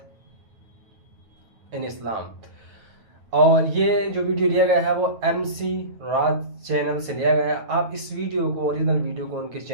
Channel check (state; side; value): late; left; 9.3 ms